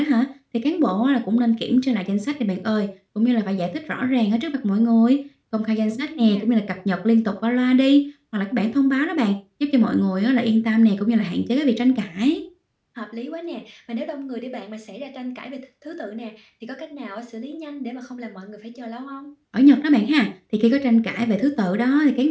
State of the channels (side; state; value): both; identical; correlation 1.00